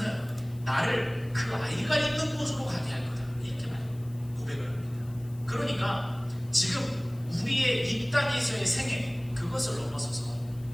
나를 그 아이가 있는 곳으로 가게 할 거다, 이렇게 고백을 합니다. 그러니까 지금 우리의 이 땅에서의 생애, 그것을 넘어서서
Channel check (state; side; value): noise; left; hiss, 25 dB below the sound